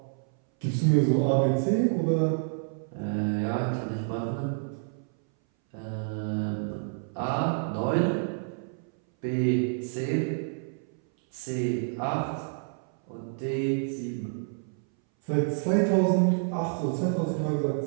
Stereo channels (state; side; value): silent; left; 59 dB below the other